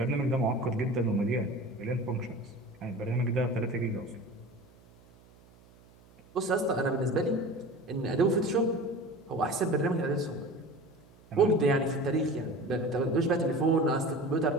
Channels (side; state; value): right; noise; hum, 27 dB below the sound